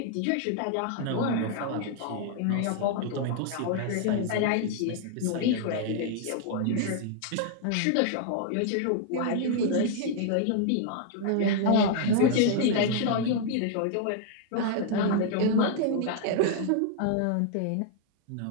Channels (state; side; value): different; both; correlation 0.00